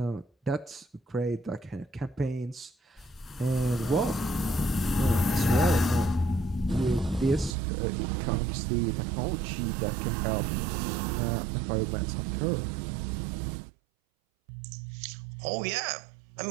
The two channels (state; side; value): drops out; left; at 7.6 s